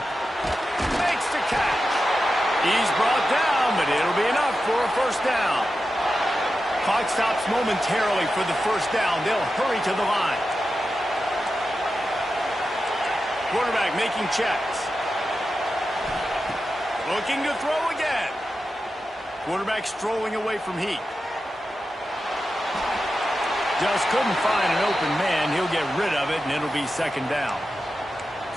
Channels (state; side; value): normal; both; correlation 0.91